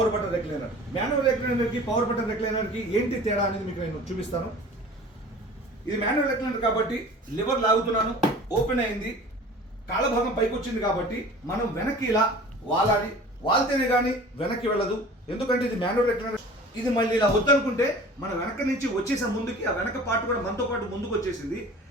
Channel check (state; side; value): normal; both; correlation 0.42